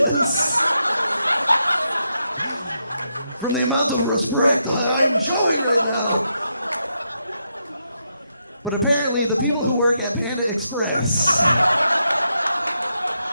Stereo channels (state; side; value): inverted; both; correlation -0.82